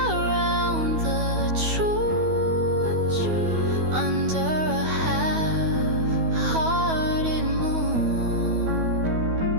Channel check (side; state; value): left; late; 12 ms